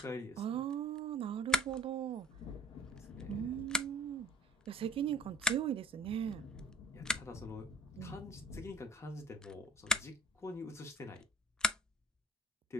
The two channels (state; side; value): normal; both; correlation 0.47